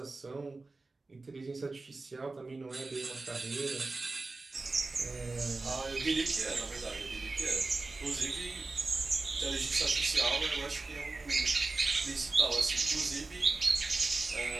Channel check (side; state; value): left; quieter; 3.5 dB